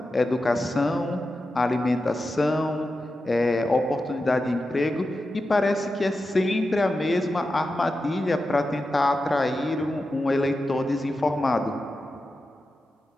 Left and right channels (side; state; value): both; normal; correlation 0.91